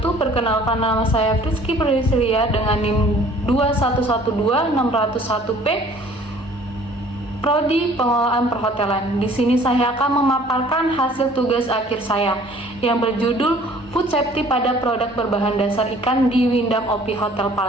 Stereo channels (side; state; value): both; normal; correlation 0.53